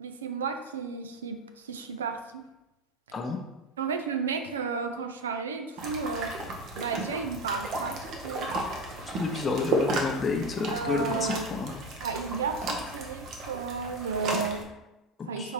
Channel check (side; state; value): both; normal; correlation 0.18